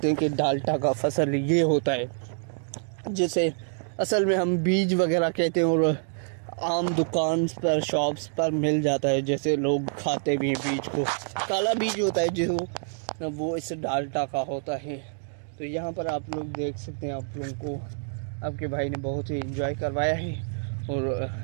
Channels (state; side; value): silent; left; digital silence